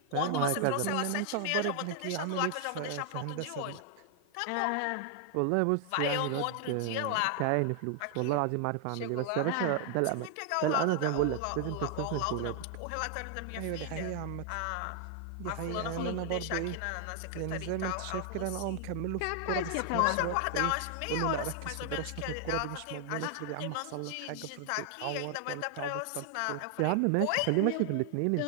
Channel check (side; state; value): both; different; correlation 0.00